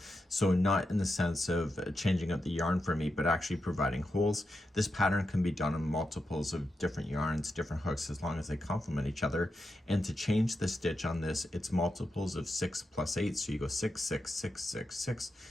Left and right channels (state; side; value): normal; both; correlation 0.87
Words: So not in the sense of changing up the yarn for me, but actually providing holes. This pattern can be done in multiples of different yarns, different hooks, as long as they complement each other. And to change the stitch on this, it's multiples of 6 plus 8. So you go 6, 6, 6, 6, 6.